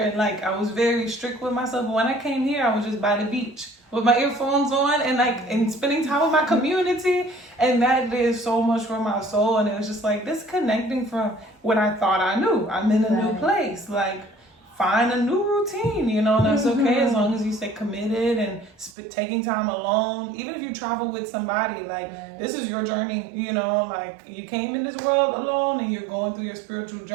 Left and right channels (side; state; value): left; drops out; at 18.9 s